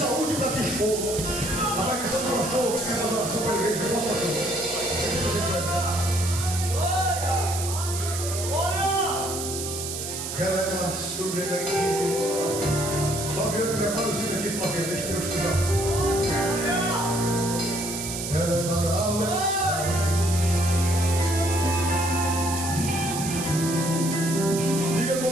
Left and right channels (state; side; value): noise; right; hiss, 6 dB below the sound